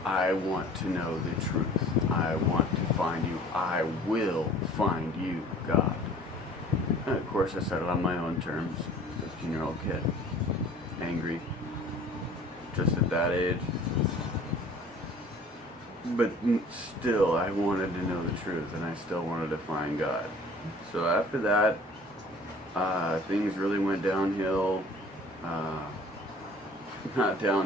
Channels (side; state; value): both; normal; correlation 0.49